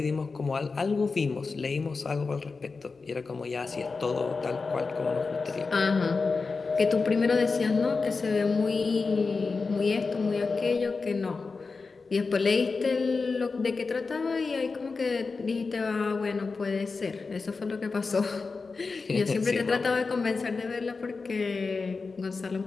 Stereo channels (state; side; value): quieter; right; 4.3 dB